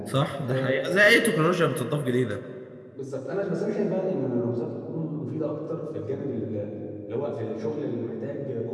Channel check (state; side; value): identical; both; correlation 1.00